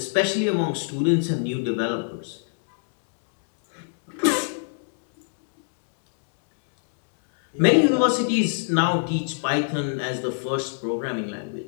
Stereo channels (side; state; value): right; silent; digital silence